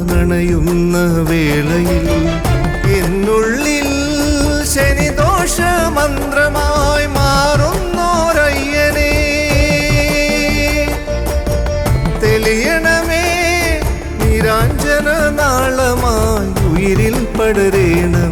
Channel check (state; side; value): identical; both; correlation 1.00